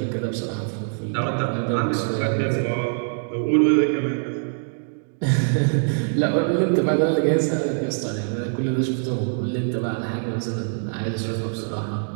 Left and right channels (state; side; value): silent; left; digital silence